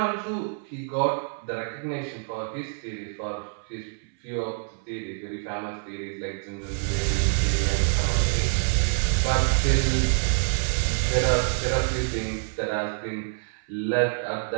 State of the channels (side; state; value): left; silent; 61 dB below the other